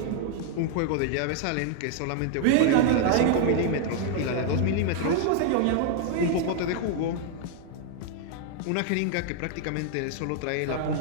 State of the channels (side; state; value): both; different; correlation 0.00